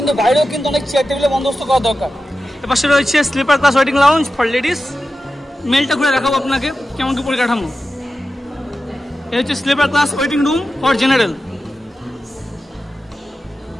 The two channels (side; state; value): both; normal; correlation 0.93